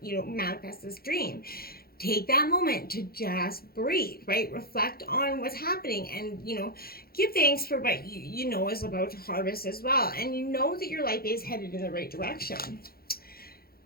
to, manifest this dream. Take that moment to just breathe, right? Reflect on what's happening and, give thanks for what you know is about to harvest as well. And you know that your life is headed in the right direction.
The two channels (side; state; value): right; late; 0.44 ms